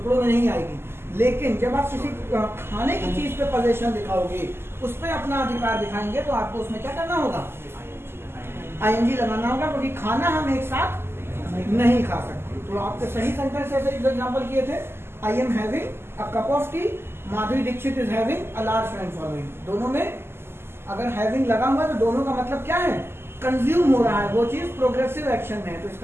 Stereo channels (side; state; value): left; late; 0.12 ms